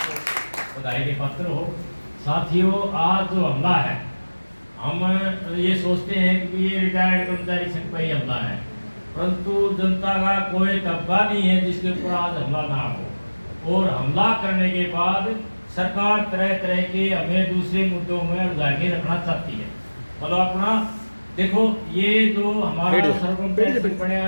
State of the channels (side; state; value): both; inverted; correlation -1.00